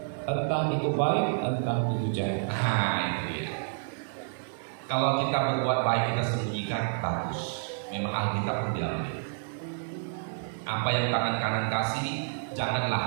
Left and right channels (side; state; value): left; silent; 55 dB below the other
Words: Entah itu baik, entah itu jahat. Nah, itu dia. Kalau kita berbuat baik kita sembunyikan, bagus. Memang Alkitab pun bilang begitu. Apa yang tangan kanan kasih,